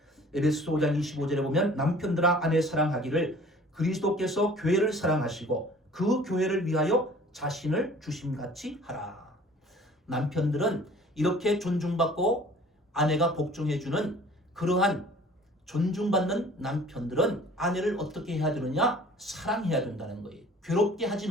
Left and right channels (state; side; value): normal; both; correlation 0.50